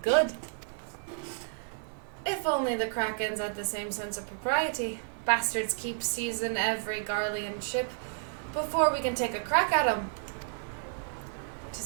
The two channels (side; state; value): left; silent; digital silence